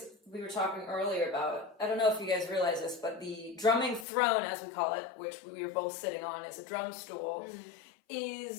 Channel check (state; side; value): drops out; right; at 4.0 s